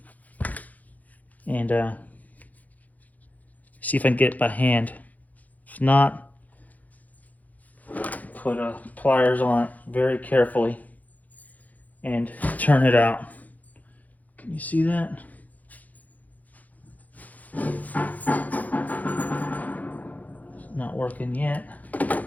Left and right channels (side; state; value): right; late; 0.079 ms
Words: and see if I can get it by hand. If not, put pliers on it very carefully and turn it out. Can you see that? It's not working yet.